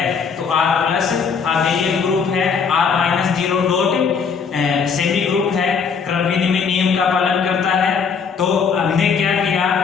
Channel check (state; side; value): quieter; right; 5.9 dB